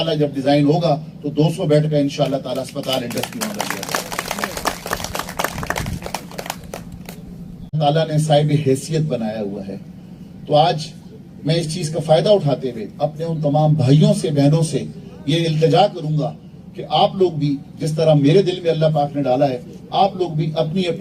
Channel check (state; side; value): identical; both; correlation 1.00